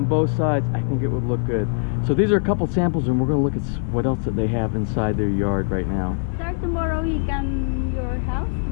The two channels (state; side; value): silent; right; 64 dB below the other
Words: both sides, I think it would look good. So these are a couple samples, and we're going to look at what else that they have inside their yard right now. Sir, tomorrow he come your house